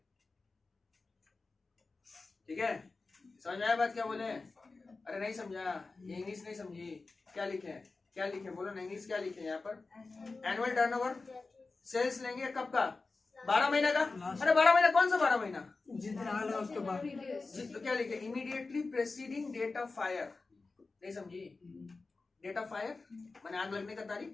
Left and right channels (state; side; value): quieter; right; 3.8 dB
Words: ठीक है। समझ में आया बात क्या बोले? अरे नहीं समझा, ये इंग्लिश नहीं समझी, क्या लिखे क्या लिखे बोलो ना, इंग्लिश क्या लिखे यहाँ पर? एनुअल टर्नओवर सेल्स लेंगे कब का? 12 महीना का। अरे 12 महीना कौन सा 12 महीना? जितना आग लगा उसके बाद तो क्या लिखे? Immediately preceding date of fire, नहीं समझी? डेट ऑफ फायर माने आग लगने का